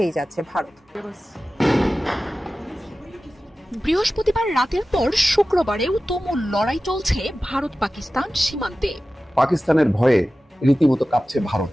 যাচ্ছে ভারত। বৃহস্পতিবার রাতের পর শুক্রবারেও তুমুল লড়াই চলছে ভারত পাকিস্তান সীমান্তে। পাকিস্তানের ভয়ে রীতিমতো কাঁপছে ভারত,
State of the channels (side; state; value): both; normal; correlation 0.95